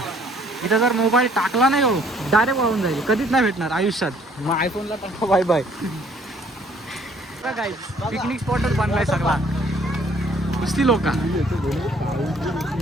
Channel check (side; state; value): both; normal; correlation 0.60